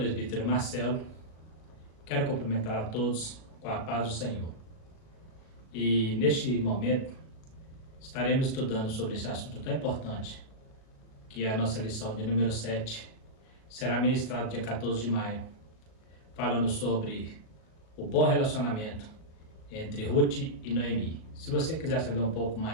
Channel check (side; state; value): right; late; 37 ms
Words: Marcelo, quero cumprimentar a todos com a paz do Senhor. E neste momento estaremos estudando sobre esse assunto tão importante, que é a nossa lição de número 7, será ministrado dia 14 de maio, falando sobre o bom relacionamento entre Ruth e Noemi. Se você quiser saber um pouco